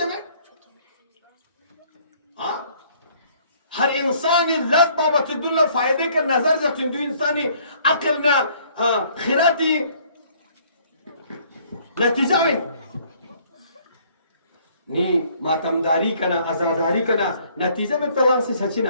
में हर इंसान ये लज बाबत दुनिया फायदे का नजर जब जो इंसानी अक्ल ना खिराती नतीजा में नी मातमदारी कना आजादारी कना नतीजे में तलाक से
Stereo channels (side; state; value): both; inverted; correlation -0.61